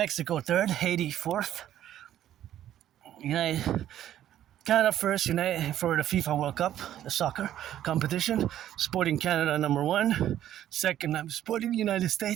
third, Haiti fourth, Canada first, for the FIFA World Cup, the soccer competition. Sporting Canada number one. Second, I'm supporting the United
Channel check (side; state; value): left; quieter; 11.8 dB